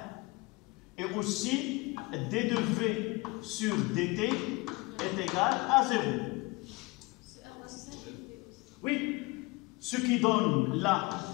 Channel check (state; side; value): quieter; right; 24.4 dB